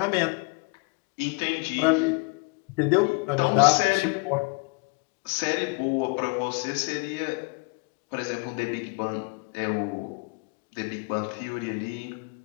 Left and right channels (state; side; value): quieter; right; 30.7 dB